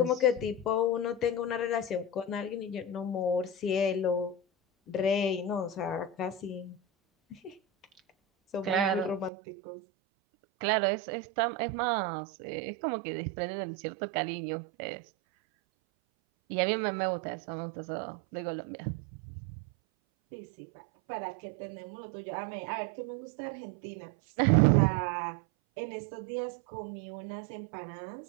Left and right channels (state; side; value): drops out; left; at 9.3 s